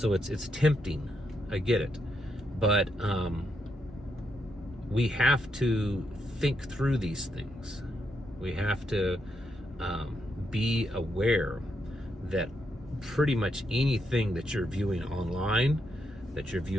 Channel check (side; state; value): both; normal; correlation 0.80